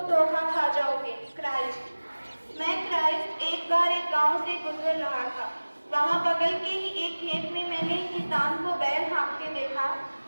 धोखा खा जाओगे। क्राइस्ट। मैं क्राइस्ट एक बार एक गांव से गुजर रहा था। वहां बगल के ही एक खेत में मैंने एक किसान को बैल हाँकते देखा।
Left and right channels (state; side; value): inverted; both; correlation -1.00